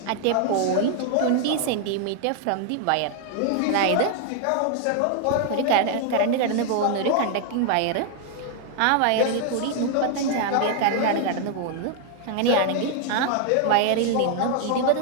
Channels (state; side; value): different; both; correlation 0.00